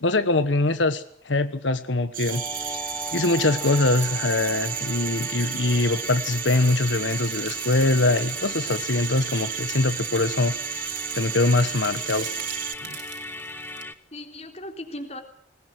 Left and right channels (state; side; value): normal; both; correlation 0.29